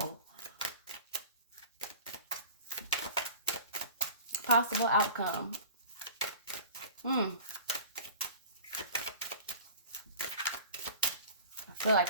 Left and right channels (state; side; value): inverted; both; correlation -0.39